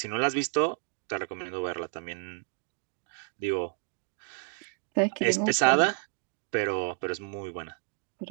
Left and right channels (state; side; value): silent; left; 57 dB below the other